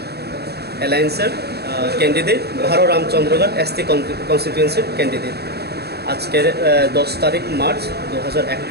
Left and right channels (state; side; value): late; left; 0.47 ms